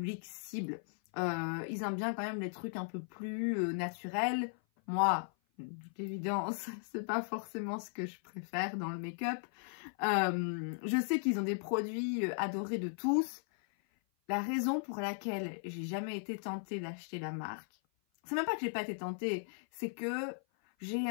cible. Ils aiment bien quand même les trucs un peu plus naturels. Moi, d'évidence, c'est pas forcément ce que je préfère dans le make-up. Je sais qu'ils ont des produits adorés de tous. La raison pour laquelle j'ai jamais été tentée d'acheter la marque, c'est même pas que j'ai pas été tentée, c'est que j'ai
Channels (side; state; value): right; silent; 53 dB below the other